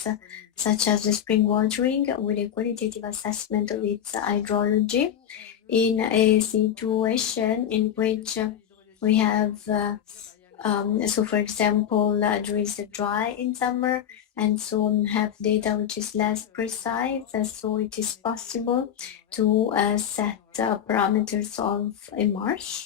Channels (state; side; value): quieter; right; 9.4 dB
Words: such as the spring watering with a qualitative assessment of its hydrology in a situation in which we have so for example there is a dry in summer, and so have data which is less precise, so it is possible to set parameters of a